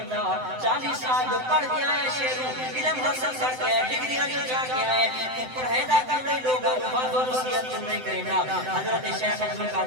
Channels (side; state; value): left; late; 7.8 ms